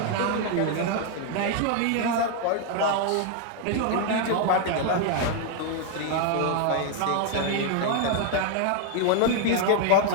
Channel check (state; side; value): different; both; correlation 0.00